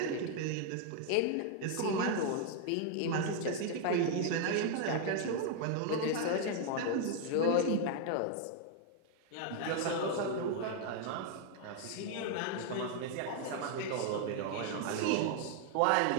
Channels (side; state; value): both; different; correlation 0.00